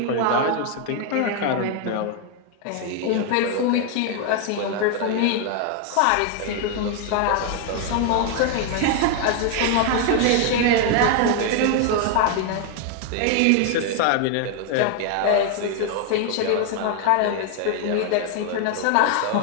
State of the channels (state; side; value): different; both; correlation 0.01